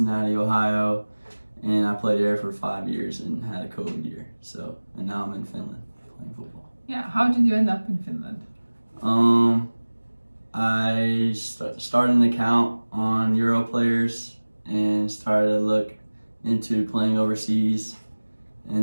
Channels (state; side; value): inverted; both; correlation -1.00